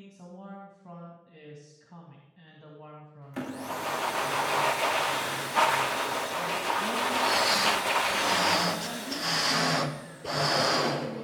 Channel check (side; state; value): both; identical; correlation 1.00